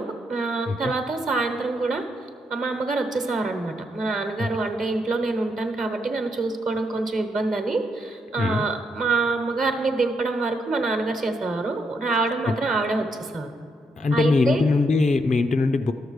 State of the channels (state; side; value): normal; both; correlation 0.78